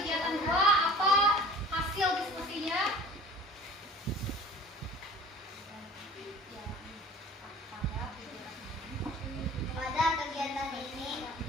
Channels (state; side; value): normal; both; correlation 0.44